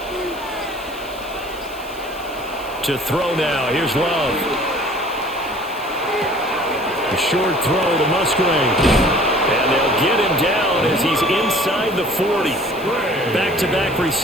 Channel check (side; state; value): right; noise; hiss, 21 dB below the sound